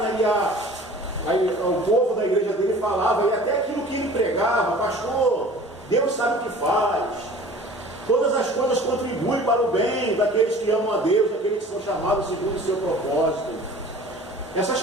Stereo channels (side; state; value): both; normal; correlation 0.45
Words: e o povo da igreja dele falava, e até aquilo que ele pregava: pastor, Deus sabe o que faz, todas as coisas contribuem para o bem daqueles que amam a Deus, daqueles que são chamados segundo o seu propósito. Essas